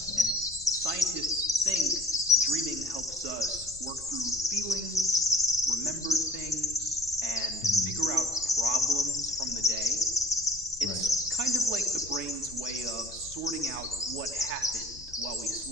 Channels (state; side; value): noise; left; rumble, 19 dB below the sound